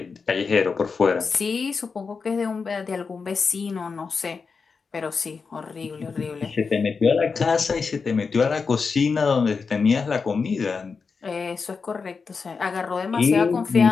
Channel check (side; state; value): right; quieter; 5.1 dB